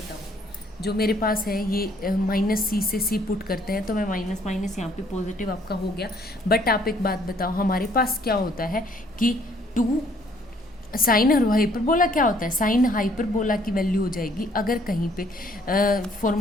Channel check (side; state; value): both; normal; correlation 0.63